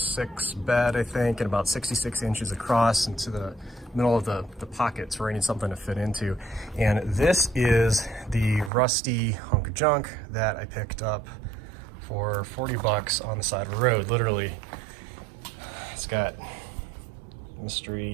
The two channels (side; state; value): left; drops out; at 8.7 s